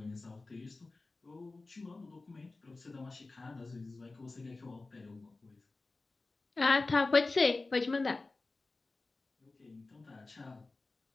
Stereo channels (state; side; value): quieter; right; 3.4 dB